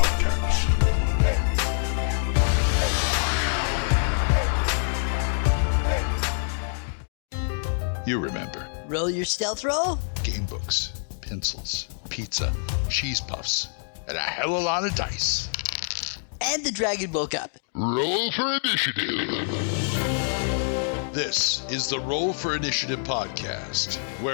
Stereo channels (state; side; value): silent; right; digital silence